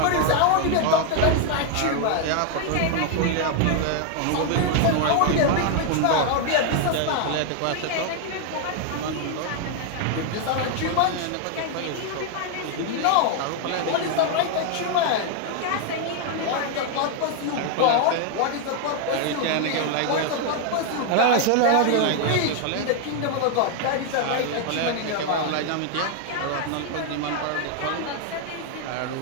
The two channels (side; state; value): both; different; correlation 0.00